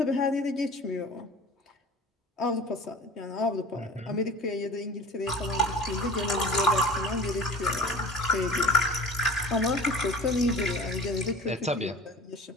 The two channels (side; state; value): both; normal; correlation 0.39